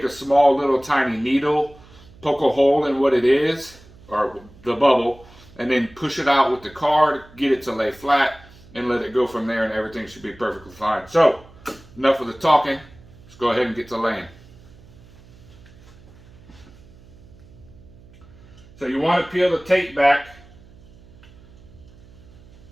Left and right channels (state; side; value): noise; right; hum, 23 dB below the sound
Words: a small little tiny needle, poke a hole in what it is, or the bubble, and then push it out with the card, get it to lay flat, and let it go from there, and everything should be perfectly fine. So, enough of the talking. Let's go ahead and get to laying. So you want to peel the tape back,